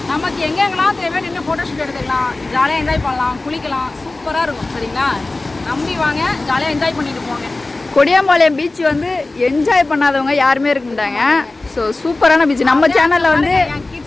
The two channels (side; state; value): right; quieter; 3.1 dB